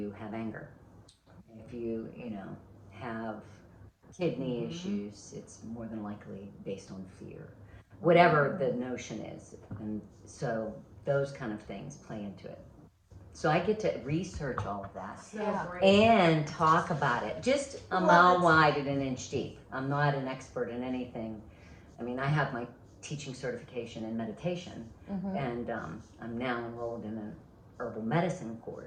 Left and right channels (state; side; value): identical; both; correlation 1.00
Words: have anger. If you have kidney issues, it's more than likely based on fear, whatever the notion is. And so those kind of things play into it. So I get to research all of that and talk about it, just a mile wide and an inch deep. I'm not an expert in anything. I mean, I have my teaching certification in meditation, and I'm now enrolled in an herbal medicine